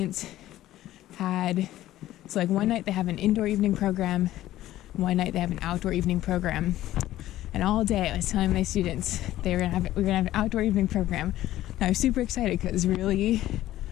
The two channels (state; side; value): quieter; right; 14.4 dB